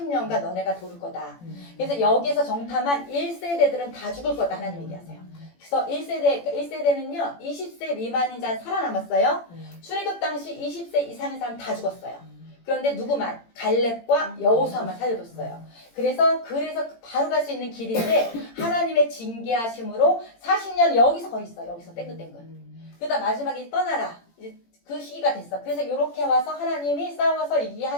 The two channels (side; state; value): right; late; 18 ms